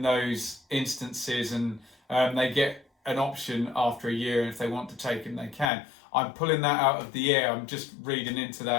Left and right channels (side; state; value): right; drops out; at 5.7 s